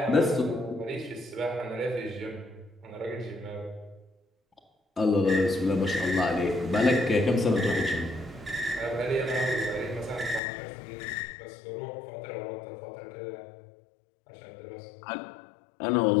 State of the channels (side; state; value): right; drops out; at 10.4 s